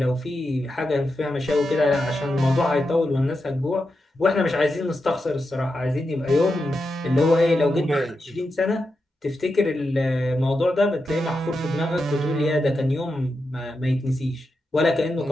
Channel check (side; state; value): both; normal; correlation 0.88